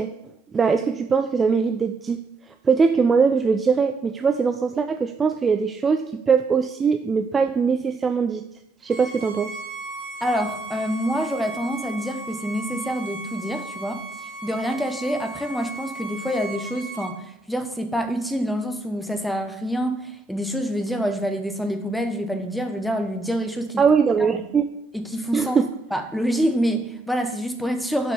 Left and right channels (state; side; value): quieter; left; 3.4 dB